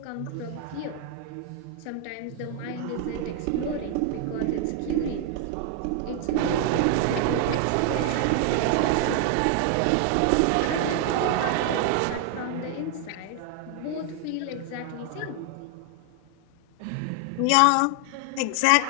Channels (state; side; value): different; both; correlation 0.00